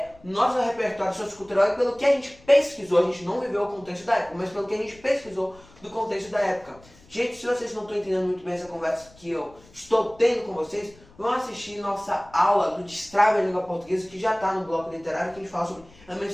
nosso repertório sociocultural e pelo que a gente pesquisou. A gente não viveu o contexto da época, mas pelo que a gente pesquisou do contexto da época. Gente, se vocês não estão entendendo muito bem essa conversa que eu estou tendo com vocês, vão assistir nossa aula do Destrave a Língua Portuguesa, que já está no bloco literário, que a gente fala sobre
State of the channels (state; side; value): noise; left; rumble, 26 dB below the sound